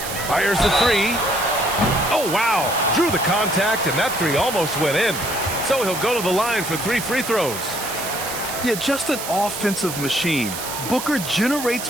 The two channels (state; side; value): noise; right; hiss, 7 dB below the sound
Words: Fires the 3. Oh, wow. Drew the contact, and that 3 almost went in. So he'll go to the line for 3 free throws. Yeah, just an offensive machine. Booker generates